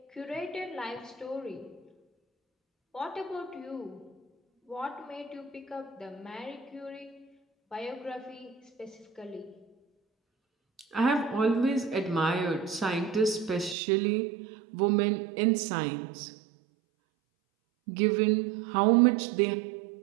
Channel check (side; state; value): left; drops out; at 13.8 s